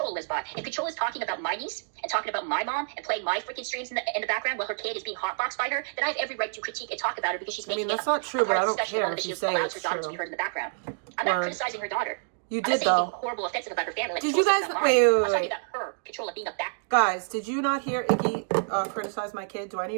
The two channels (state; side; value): silent; left; digital silence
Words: lives by. If Controlla is talking about my niece and talking about my mom and playing my freaking streams in the background while her kid is being hotboxed by her, then I have every right to critique and talk about her because she's making that's not true, but I don't care if you say it's true. I'm not criticizing her daughter. You did though. Horrible, offensive about her family. Like, did you guys wait? Her, Controlla being a back. Guys, did you not hear Iggy criticize my kid? Do I